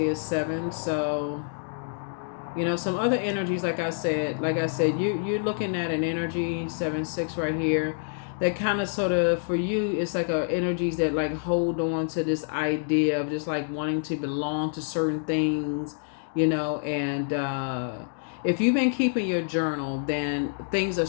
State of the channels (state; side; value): silent; right; digital silence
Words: is 7. So, you know, some other energies, like I said, you're looking at an energy, 7, 6 right here, that kind of sort of, for you, it's like energies that like hold on to this idea of just like wanting to belong to certain things, you know, and if you've been keeping your journal, then things are